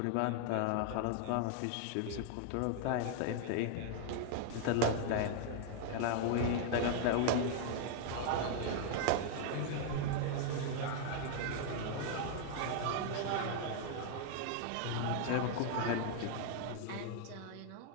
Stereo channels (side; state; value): both; different; correlation 0.00